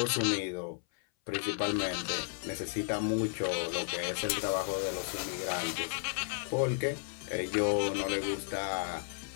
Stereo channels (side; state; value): right; silent; 55 dB below the other